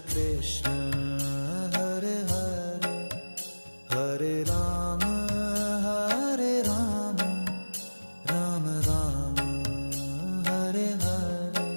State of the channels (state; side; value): inverted; both; correlation -1.00